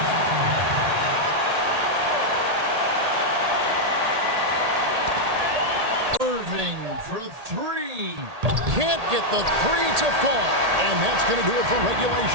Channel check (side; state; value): left; late; 1.8 ms